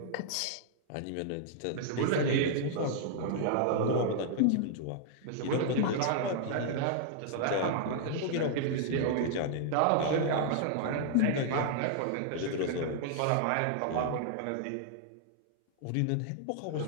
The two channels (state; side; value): different; both; correlation -0.01